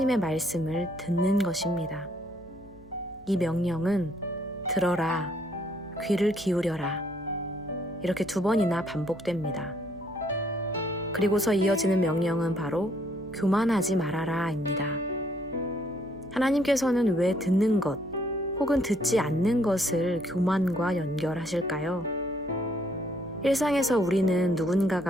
말씀을 듣는 것입니다. 이 명령은 들어라, 귀를 기울여라. 이렇게 2번이나 반복됩니다. 그리고서 이어지는 명령은 바로 교만하지 말아라입니다. 하나님께서는 왜 듣는 것 혹은 듣지 않는 것을 교만과 연결하실까요? 일상에서 우리는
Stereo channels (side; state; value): left; noise; hum, 24 dB below the sound